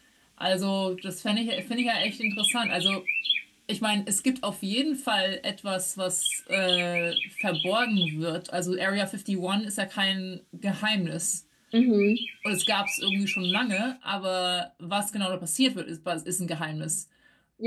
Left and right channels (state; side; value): identical; both; correlation 1.00